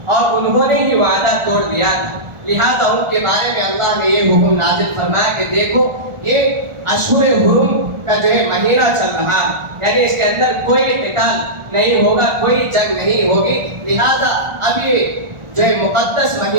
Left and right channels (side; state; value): left; late; 1.4 ms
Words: اور انہوں نے ہی وعدہ توڑ دیا تھا، لہذا ان کے بارے میں اللہ نے یہ حکم نازل فرمایا کہ دیکھو یہ اشہر حرم کا جو ہے مہینہ چل رہا ہے، یعنی اس کے اندر کوئی قتال نہیں ہوگا، کوئی جنگ نہیں ہوگی، لہذا اب یہ جو ہے مقدس